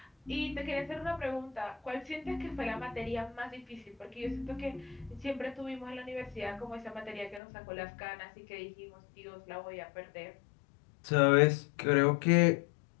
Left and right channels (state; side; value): drops out; right; at 7.4 s